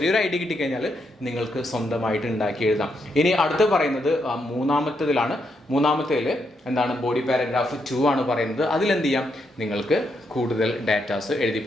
ഐഡിയ കിട്ടിക്കഴിഞ്ഞാൽ നിങ്ങൾക്ക് സ്വന്തമായിട്ട് ഉണ്ടാക്കി എഴുതാം. ഇനി അടുത്ത് പറയുന്നത് മൂന്നാമത്തേതിൽ എന്താണ്? ബോഡി പാരഗ്രാഫ് 2 ആണ് പറയുന്നത്. അതിലെന്ത് ചെയ്യാം? നിങ്ങൾക്ക് കൂടുതൽ ഡാറ്റാസ് എഴുതി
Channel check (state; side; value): normal; both; correlation 0.79